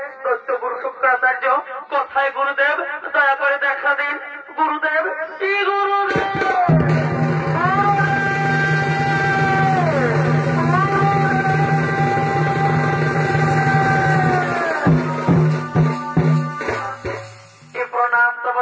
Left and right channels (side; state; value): both; identical; correlation 1.00